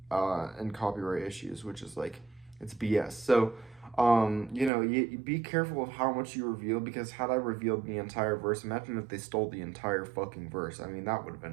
and copyright issues, which is like, it's BS. So, you be careful of how much you reveal, because had I revealed the entire verse, imagine if they stole the entire fucking verse. I mean, that would have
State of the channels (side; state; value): left; drops out; at 4.7 s